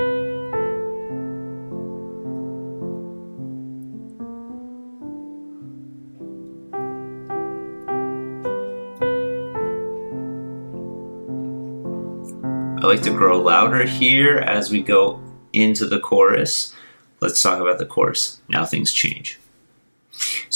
I like to grow louder here as we go into the chorus. Let's talk about the chorus. Now things change.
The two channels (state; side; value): inverted; both; correlation -1.00